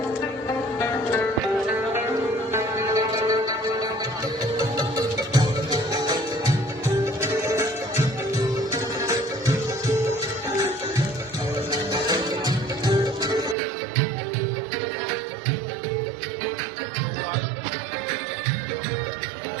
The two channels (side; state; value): left; drops out; at 13.6 s